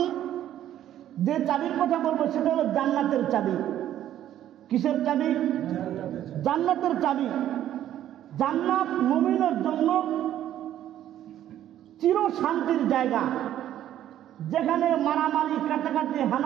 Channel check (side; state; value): left; quieter; 11.8 dB